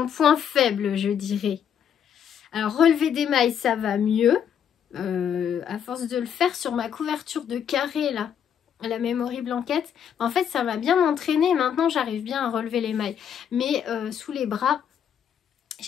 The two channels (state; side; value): quieter; right; 8.5 dB